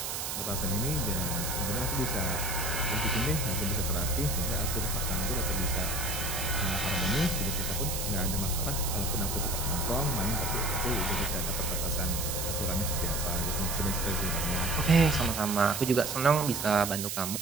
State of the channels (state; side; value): noise; right; hiss, 3 dB below the sound